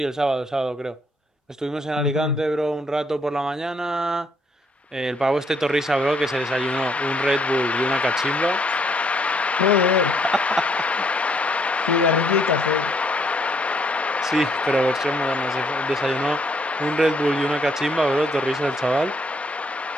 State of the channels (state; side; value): normal; both; correlation 0.69